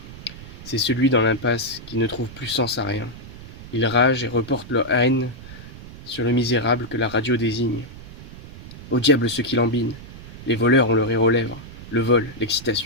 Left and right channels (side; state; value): right; noise; rumble, 15 dB below the sound